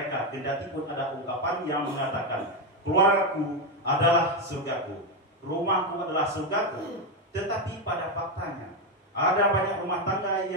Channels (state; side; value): normal; both; correlation 0.07